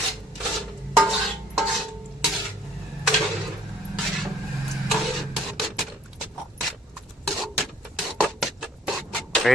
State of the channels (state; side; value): normal; both; correlation 0.60